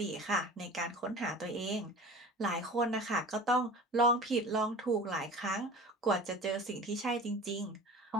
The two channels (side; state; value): both; normal; correlation 0.39